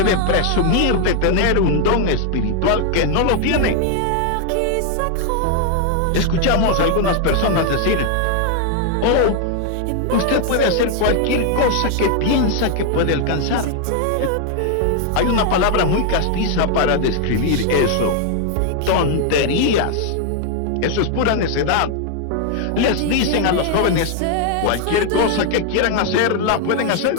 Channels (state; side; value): different; both; correlation 0.00